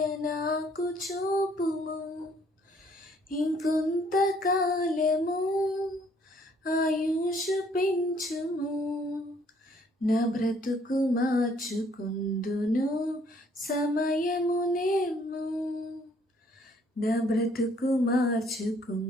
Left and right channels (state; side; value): normal; both; correlation 0.63